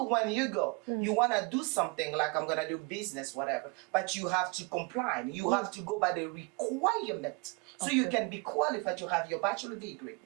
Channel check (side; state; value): left; quieter; 29.5 dB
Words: when you go, you want to do something like I'm going to do business, whatever, but you have to comply. You have to go by the requirement so you can be qualified to have your bachelor degree.